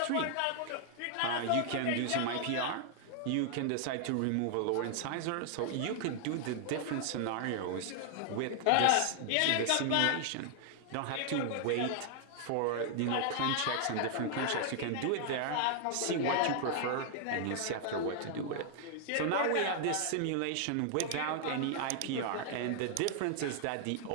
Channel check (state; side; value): different; both; correlation 0.00